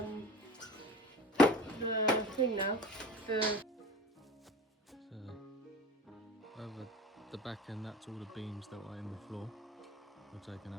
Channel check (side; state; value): both; normal; correlation 0.36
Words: the thing now. So over the back end, that's all the beams that were in the floor. We're taking